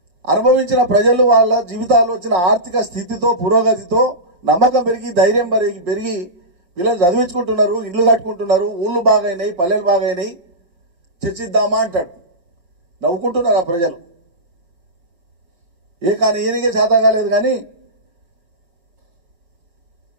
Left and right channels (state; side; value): late; left; 5.7 ms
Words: అనుభవించిన ప్రజలు వాళ్ళ జీవితాల్లో వచ్చిన ఆర్థిక స్థితితో, పురోగతితో నమ్మకం పెరిగి, ధైర్యం పెరిగి పిల్లలు చదివించుకుంటున్నారు, ఇండ్లు కట్టుకుంటున్నారు, ఊళ్ళు బాగైనాయి, పల్లెలు బాగైనాయి, చర్చిద్దామా అంటాడు. నవ్వుకుంటున్నారు ఆ ప్రజలు. కానీ ఈయనకే చేత కాలేదు కానీ